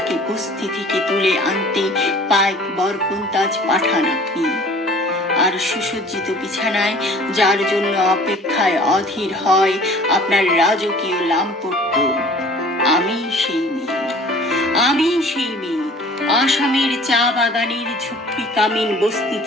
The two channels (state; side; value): normal; both; correlation 0.49